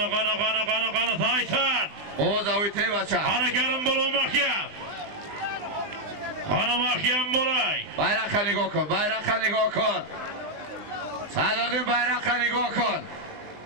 Tayson. O'zavite bacha. Qani Karim bo'lgan mahkam. Qani mahkam bo'lay. Bayroqqa nigoh kun. Sadrdin bayroqqa nigoh kun.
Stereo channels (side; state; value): left; late; 20 ms